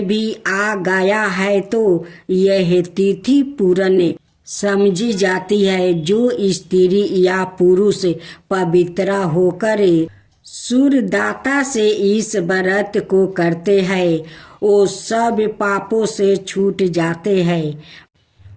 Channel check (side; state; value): both; identical; correlation 1.00